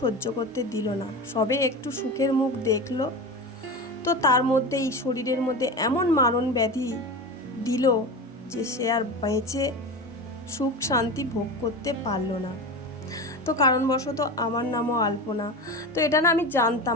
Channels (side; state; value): both; normal; correlation 0.27